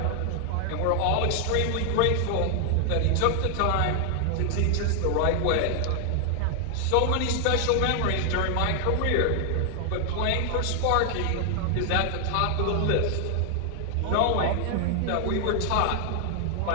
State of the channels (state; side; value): different; both; correlation 0.00